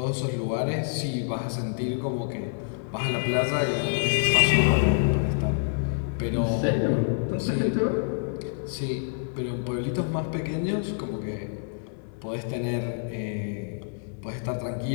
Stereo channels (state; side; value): silent; right; 59 dB below the other